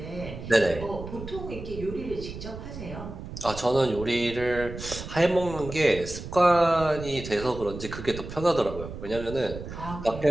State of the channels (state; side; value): noise; right; rumble, 10 dB below the sound